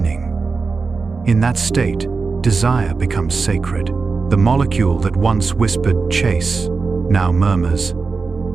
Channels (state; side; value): quieter; left; 4.5 dB